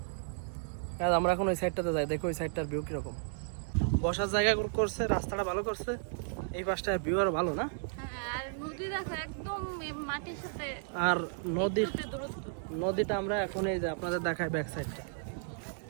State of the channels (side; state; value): left; silent; 55 dB below the other